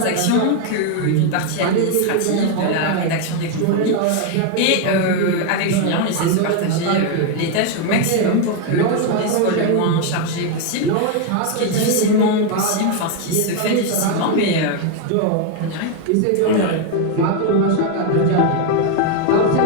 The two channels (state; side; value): different; both; correlation 0.01